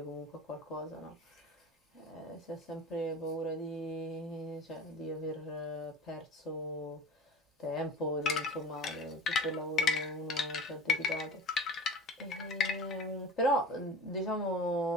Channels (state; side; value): normal; both; correlation 0.36